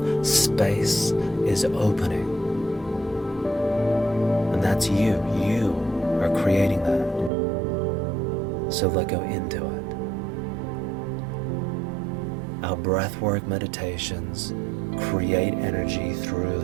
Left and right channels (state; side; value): drops out; left; at 7.3 s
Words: space is opening. And that's you. You are creating that. So let go into it. Our breathwork meditations create energy through